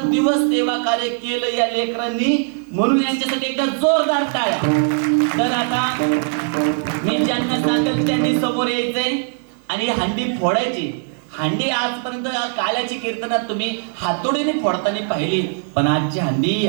दिवस सेवा कार्य केलं या लेकरांनी, म्हणून यांच्यासाठी एकदा जोरदार टाळ्या. तर आता मी ज्यांना सांगेल त्यांनी समोर यायचंय आणि हंडी फोडायची. हंडी आजपर्यंत काल्याची कीर्तनात तुम्ही हातोडीने फोडताना पाहिली, पण आजची हंडी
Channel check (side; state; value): left; silent; 57 dB below the other